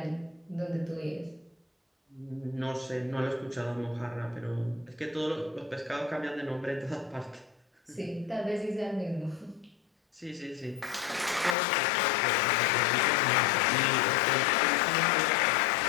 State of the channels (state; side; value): drops out; right; at 11.6 s